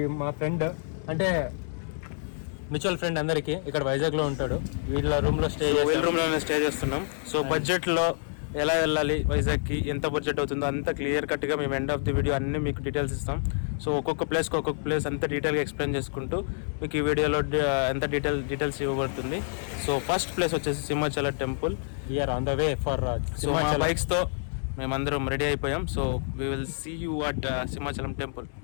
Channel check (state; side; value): silent; right; 60 dB below the other